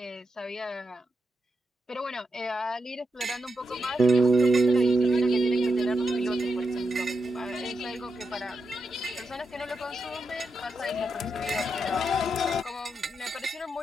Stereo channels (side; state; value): both; normal; correlation 0.85